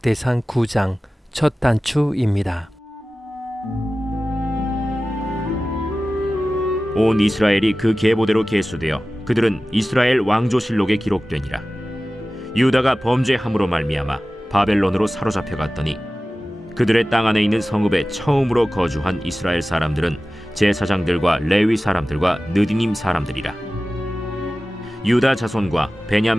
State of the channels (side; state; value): both; normal; correlation 0.96